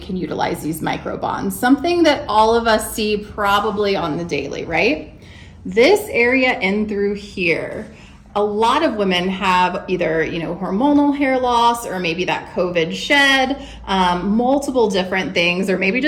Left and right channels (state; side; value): identical; both; correlation 1.00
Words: utilize these micro bonds, something that all of us see probably on the daily, right? This area in through here. A lot of women have either, hormonal hair loss or maybe that COVID shed, multiple different things, or maybe